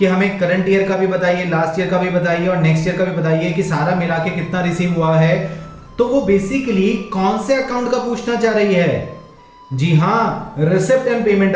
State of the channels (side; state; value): both; identical; correlation 1.00